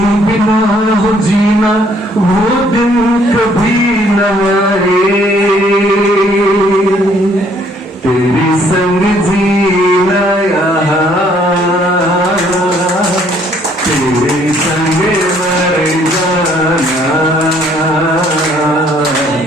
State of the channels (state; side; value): normal; both; correlation 0.63